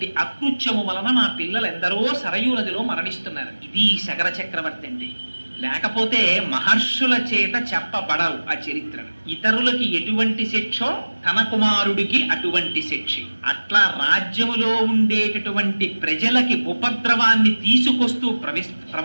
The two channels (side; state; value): both; inverted; correlation -1.00